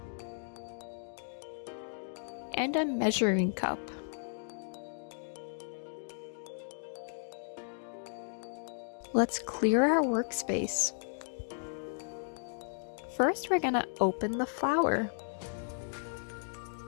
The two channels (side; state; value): right; silent; digital silence